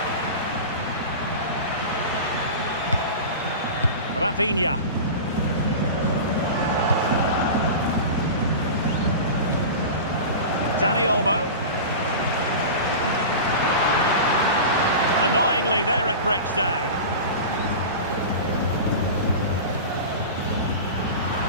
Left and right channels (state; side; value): inverted; both; correlation -0.30